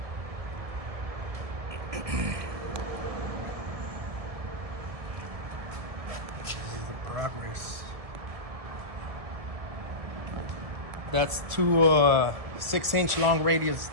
This is the progress. That's two 6-inch long radius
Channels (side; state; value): left; late; 1.7 ms